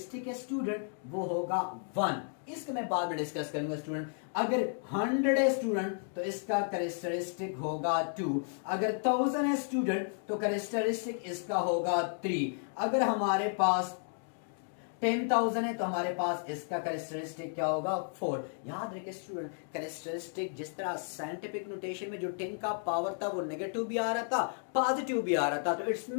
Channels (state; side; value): silent; right; 56 dB below the other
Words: है स्टूडेंट वो होगा 1। इसको मैं बाद में डिस्कस करूंगा स्टूडेंट। अगर 100 है स्टूडेंट तो इसका कैरेक्टरिस्टिक होगा 2। अगर 1000 है स्टूडेंट तो कैरेक्टरिस्टिक इसका होगा 3। अगर हमारे पास 10,000 है तो हमारे पास इसका कैरेक्टरिस्टिक क्या होगा 4। याद रखिए स्टूडेंट, कैरेक्टरिस्टिक जिस तरह साइंटिफिक नोटेशन में जो 10 का पावर था वो नेगेटिव भी आ रहा था, पॉजिटिव भी आ रहा था। तो इट्स